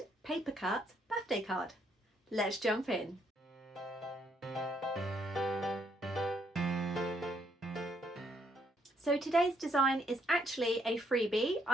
paper cut birthday card. Let's jump in. So today's design is actually a freebie.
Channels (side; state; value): both; normal; correlation 0.71